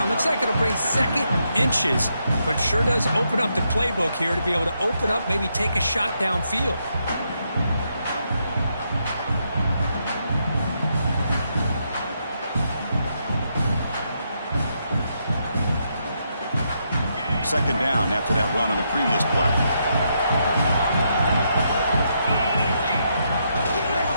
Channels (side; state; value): both; inverted; correlation -0.79